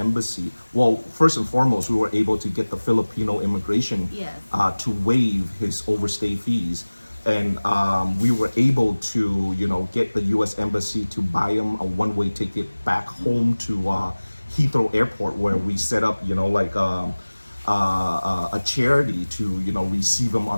Well, first and foremost, we were able to get the Filipino immigration Yes. to waive his overstay fees. And we were able to, get the U.S. Embassy to buy him a one-way ticket back home to Heathrow Airport, where we set up, a charity to, receive him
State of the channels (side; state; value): both; inverted; correlation -1.00